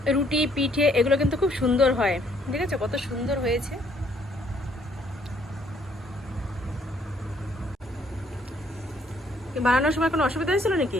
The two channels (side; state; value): both; normal; correlation 0.65